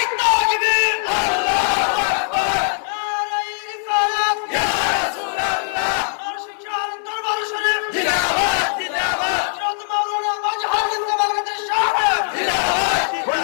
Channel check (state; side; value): silent; right; digital silence